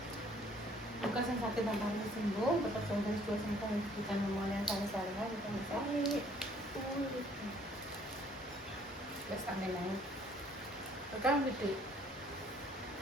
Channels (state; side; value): normal; both; correlation 0.60